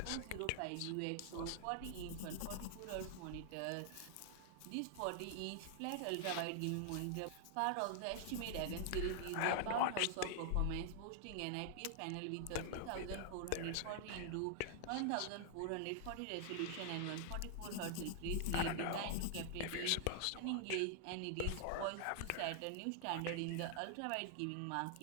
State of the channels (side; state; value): both; different; correlation 0.00